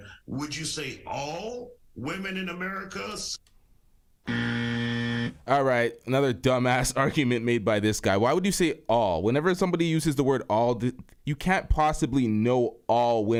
would you say all women in America? All right, another dumbass argument made by this guy. Why would you say all? Whenever somebody uses the word all, you can't possibly know all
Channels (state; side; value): identical; both; correlation 1.00